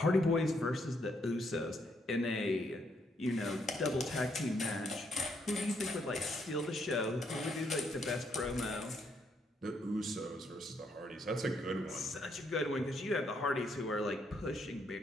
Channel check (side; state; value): both; normal; correlation 0.74